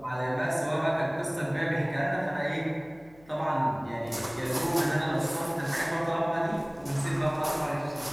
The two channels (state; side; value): noise; left; hum, 26 dB below the sound